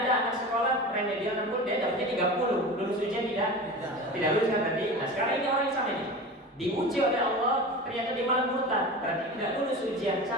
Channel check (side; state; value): both; normal; correlation 0.32